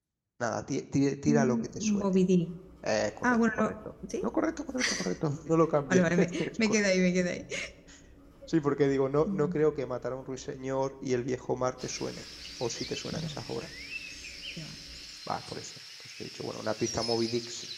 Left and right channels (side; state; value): both; identical; correlation 1.00